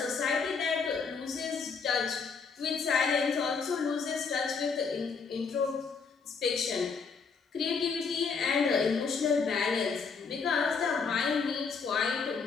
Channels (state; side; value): quieter; right; 5.3 dB